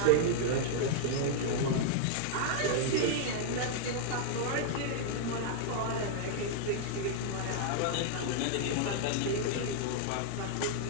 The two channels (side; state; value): both; different; correlation 0.00